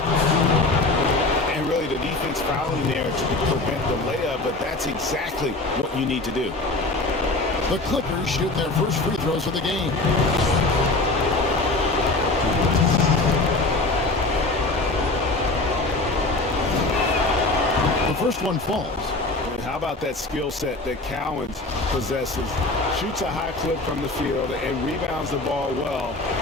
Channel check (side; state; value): right; quieter; 3.0 dB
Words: And really the defense fouling there to prevent the layup, but that's exactly what you need to do. The Clippers shoot their first free throws of the game. The first one falls. How about that skill set that Cowens possesses? Shoots a high clip from the field and rebounds the ball well